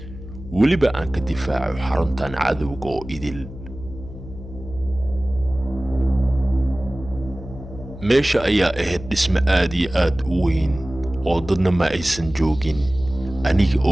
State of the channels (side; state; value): left; noise; hum, 14 dB below the sound